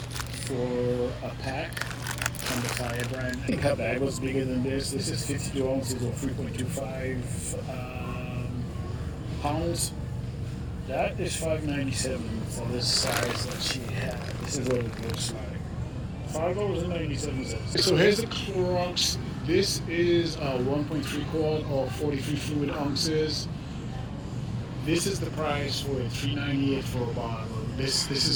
for a pack on the Fire brand. I think her bag was bigger than this. This is 52 ounces or 3.25 pounds. That is $5.97 for this size that she had. This is what it looks like. $5.97. So here's the Clorox. This is a 1.3 quart or 43 fluid ounces. This is the price for it, $3.98 for a bottle. This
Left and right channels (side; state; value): both; identical; correlation 1.00